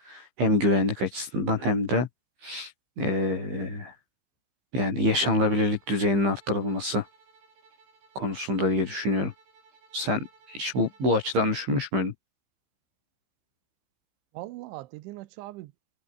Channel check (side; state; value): left; late; 15 ms